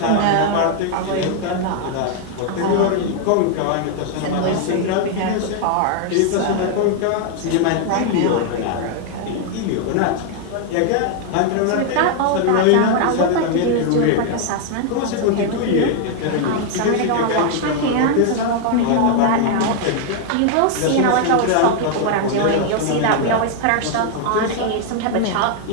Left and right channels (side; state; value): both; different; correlation 0.00